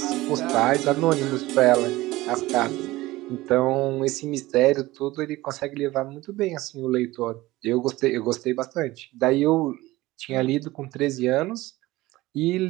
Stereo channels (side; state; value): left; quieter; 18.6 dB